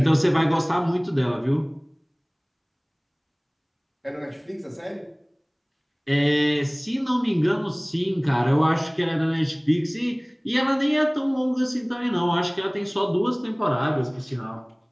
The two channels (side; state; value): both; identical; correlation 1.00